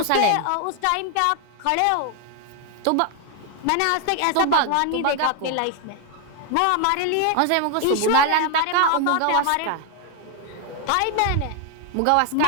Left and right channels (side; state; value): both; different; correlation 0.00